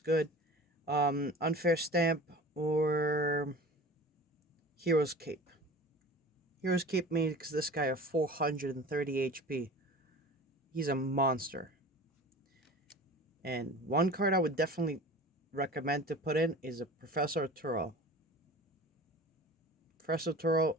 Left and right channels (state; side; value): normal; both; correlation 0.39